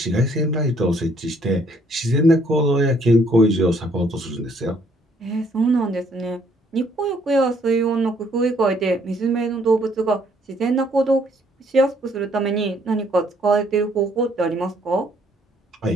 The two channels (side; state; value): both; normal; correlation 0.65